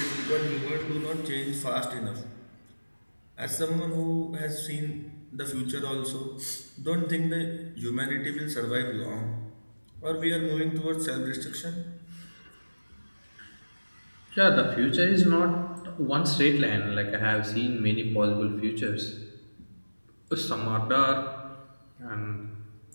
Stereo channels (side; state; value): both; inverted; correlation -1.00